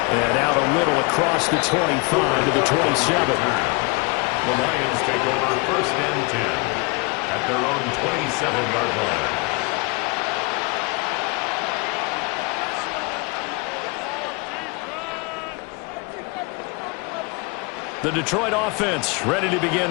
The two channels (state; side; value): quieter; right; 29.0 dB